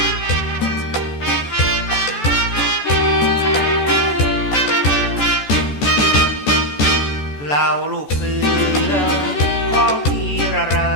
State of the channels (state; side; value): late; right; 14 ms